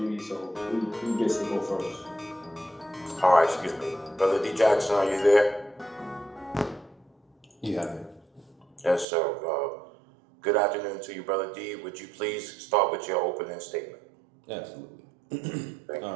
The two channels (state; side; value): drops out; left; at 9.1 s